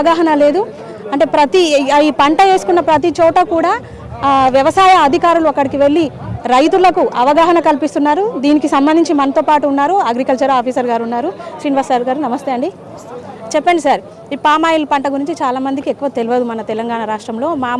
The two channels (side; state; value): both; identical; correlation 1.00